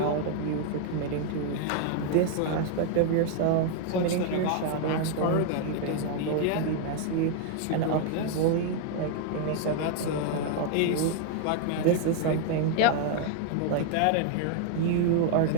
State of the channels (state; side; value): different; both; correlation 0.00